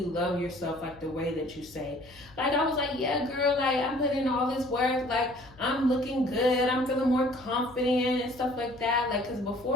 love yourself like the way that you say. Like, I was like, yeah, girl, like, I'm putting in all this work, like, I'm looking good, I'm feeling more confident and stuff like that. Like, because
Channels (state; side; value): noise; left; hum, 25 dB below the sound